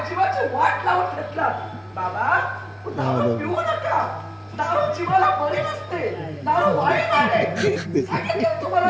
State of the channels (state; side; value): identical; both; correlation 1.00